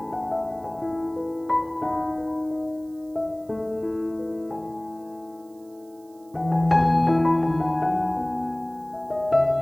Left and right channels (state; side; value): noise; right; hiss, 30 dB below the sound